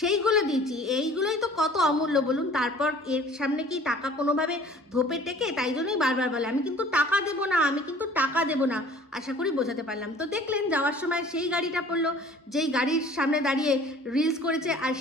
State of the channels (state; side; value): normal; both; correlation 0.49